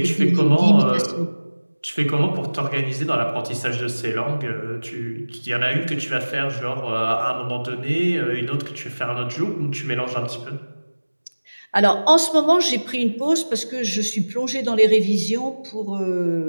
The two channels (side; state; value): both; inverted; correlation -1.00